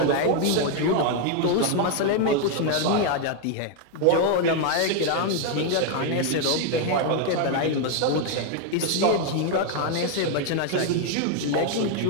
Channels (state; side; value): different; both; correlation 0.01